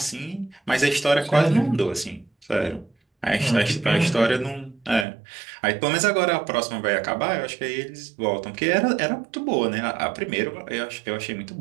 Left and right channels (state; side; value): drops out; left; at 5.1 s